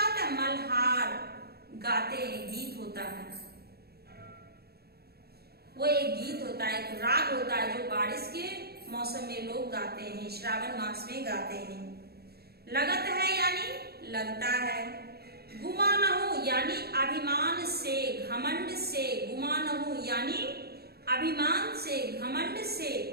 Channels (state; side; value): late; left; 0.46 ms